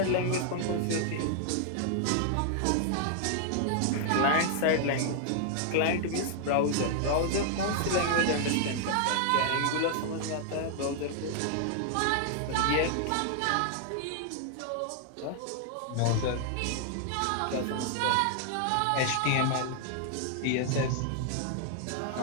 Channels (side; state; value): both; different; correlation 0.00